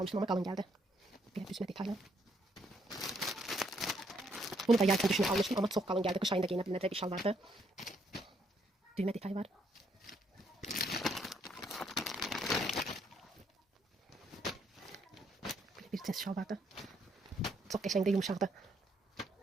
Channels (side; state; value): both; normal; correlation 0.71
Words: amma qalın gəldi. Belə düzmə detaylı. Bunu da yay üçün düşünüb almışdım, amma çox qalın gəldi. Qış ayında geyinə bilinəcək bir şal vardı. Düymə detayı var. Bir cins şal vardı. Çok qəşəngdə, yumuşaqdı.